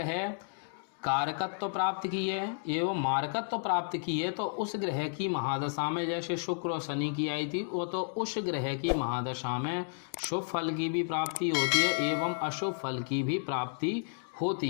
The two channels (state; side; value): silent; right; digital silence